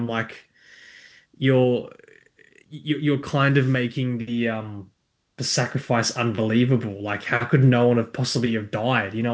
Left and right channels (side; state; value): both; identical; correlation 1.00